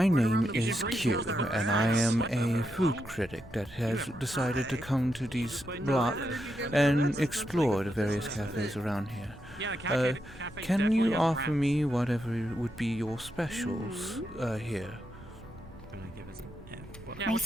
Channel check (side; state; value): both; normal; correlation 0.83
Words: name is Kyou, and I am a food critic that has decided to come to these blocks and explore the various cafes around here. Can you offer me whatever would be your specials here? I